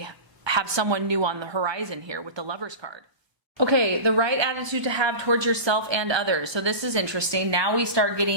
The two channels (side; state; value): left; late; 1.2 ms